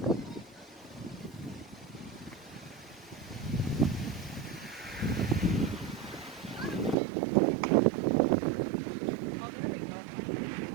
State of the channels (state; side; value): drops out; left; at 7.0 s